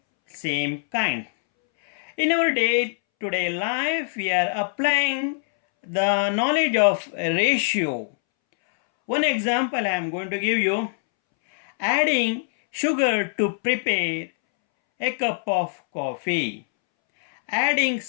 same kind. In our day-to-day life, we are applying the knowledge of ratio. One example I am going to give you. Adding sugar to prepare a cup of coffee. Adding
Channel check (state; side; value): silent; right; 63 dB below the other